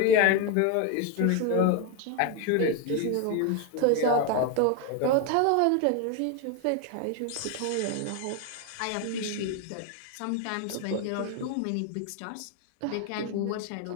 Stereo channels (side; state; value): both; different; correlation 0.01